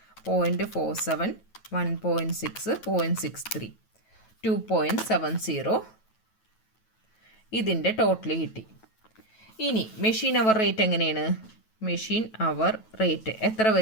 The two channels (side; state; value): right; late; 9.2 ms